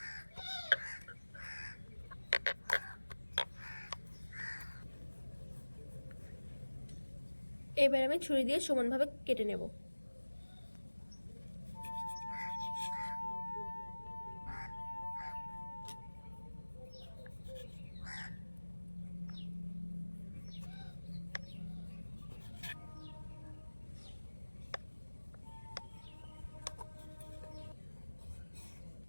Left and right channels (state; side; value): inverted; both; correlation -1.00